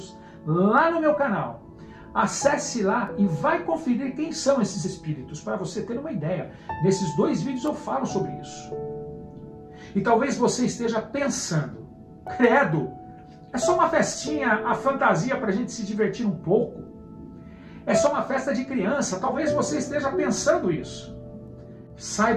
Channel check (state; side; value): identical; both; correlation 1.00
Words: lá no meu canal. Acesse lá e vai conferir quem são esses espíritos, para você ter uma ideia. Nesses 2 vídeos eu falo sobre isso. E talvez você esteja pensando, credo, é só uma festinha, a fantasia para a gente se divertir um pouco. É só uma festa de criança, talvez você esteja pensando isso.